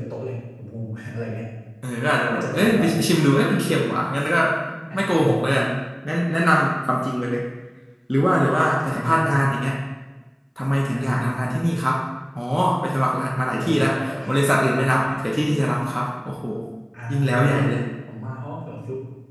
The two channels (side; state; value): both; identical; correlation 1.00